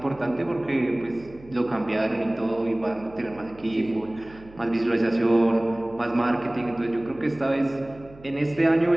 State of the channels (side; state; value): right; noise; hum, 22 dB below the sound